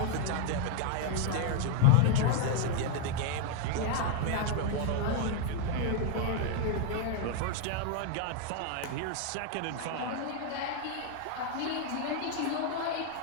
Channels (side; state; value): both; different; correlation 0.00